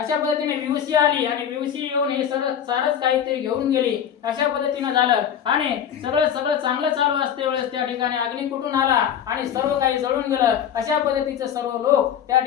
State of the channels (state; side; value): quieter; right; 9.0 dB